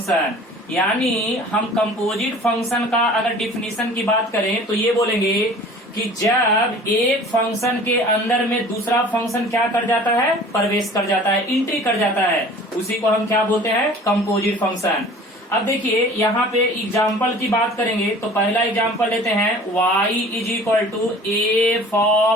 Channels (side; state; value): both; normal; correlation 0.46